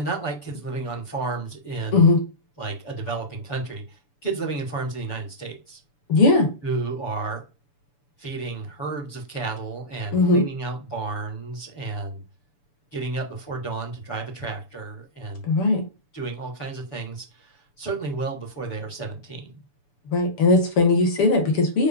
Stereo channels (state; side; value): late; right; 6.9 ms